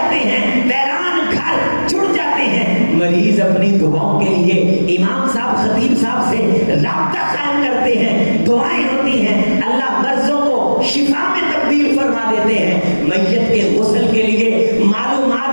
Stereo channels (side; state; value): both; inverted; correlation -1.00